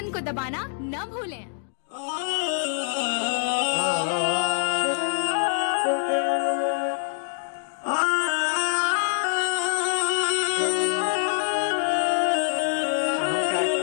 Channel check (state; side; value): silent; right; digital silence